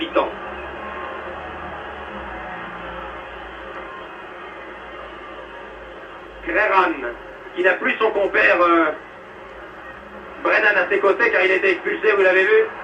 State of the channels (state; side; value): identical; both; correlation 1.00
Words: Creran, qui n'a plus son compère Brennan à ses côtés car il a été expulsé, vous l'avez vu.